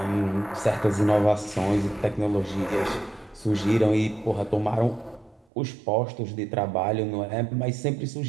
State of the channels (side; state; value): left; drops out; at 5.5 s